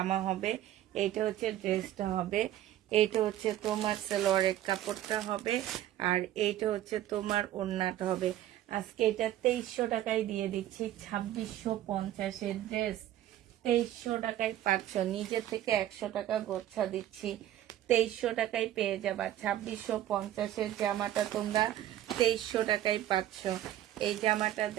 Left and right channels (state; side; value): quieter; left; 12.9 dB